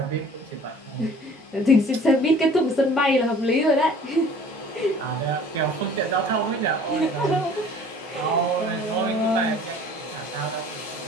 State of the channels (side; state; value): both; normal; correlation 0.50